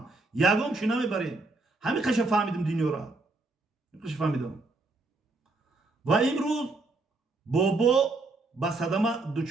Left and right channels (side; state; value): left; quieter; 3.3 dB